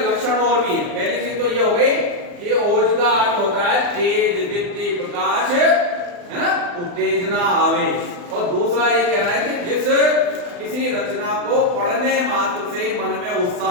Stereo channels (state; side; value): late; left; 39 ms